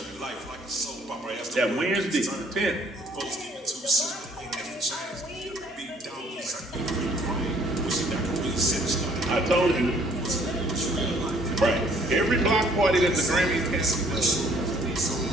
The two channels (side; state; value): both; normal; correlation 0.61